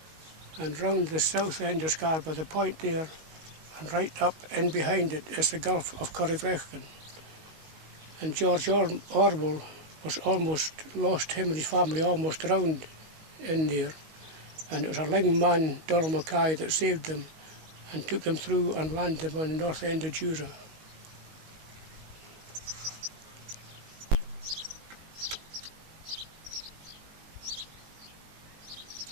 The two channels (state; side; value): late; left; 19 ms